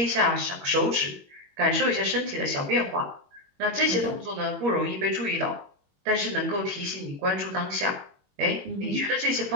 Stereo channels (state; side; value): late; left; 21 ms